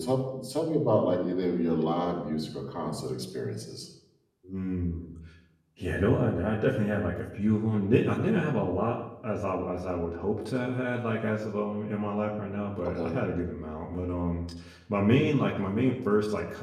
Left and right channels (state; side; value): identical; both; correlation 1.00